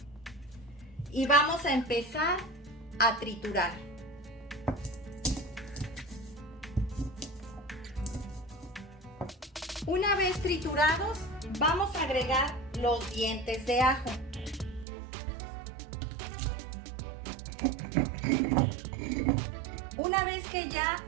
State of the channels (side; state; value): left; drops out; at 14.9 s